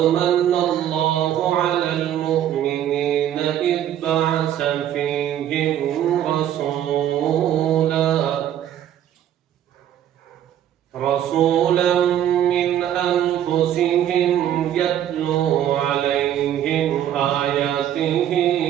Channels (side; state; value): left; quieter; 10.9 dB